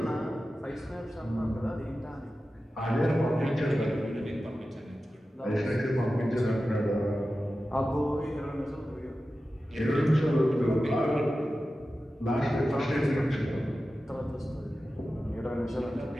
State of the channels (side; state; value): both; normal; correlation 0.94